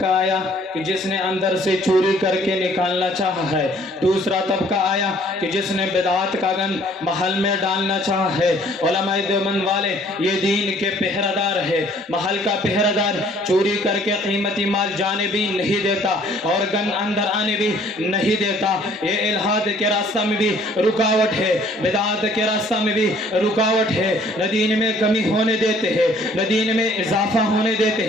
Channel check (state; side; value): normal; both; correlation 0.58